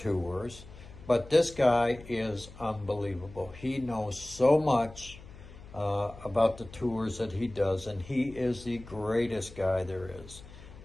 but this guy is unbelievable. He knows so much about the tours that he does, and he is the greatest guy there is.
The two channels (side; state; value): left; noise; hum, 18 dB below the sound